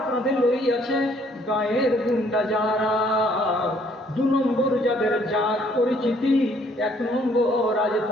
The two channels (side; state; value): both; normal; correlation 0.64